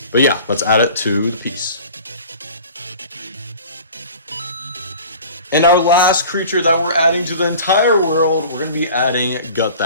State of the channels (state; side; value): inverted; both; correlation -0.42